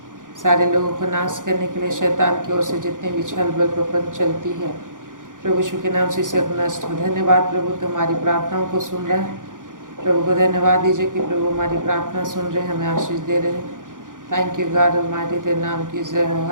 सारे लोगों को नाश करने के लिए शैतान की ओर से जितने भी छल बल प्रपंच चलती है, प्रभु यीशु के नाम से इसे नष्ट हो। धन्यवाद प्रभु, तुम्हारी प्रार्थनाओं को सुन रहे हैं। प्रभु को धन्यवाद दीजिए कि प्रभु हमारी प्रार्थना सुन रहे हैं, हमें आशीष दे रहे हैं। थैंक यू गॉड ऑलमाइटी, तेरे नाम की जय हो।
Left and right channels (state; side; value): late; left; 0.88 ms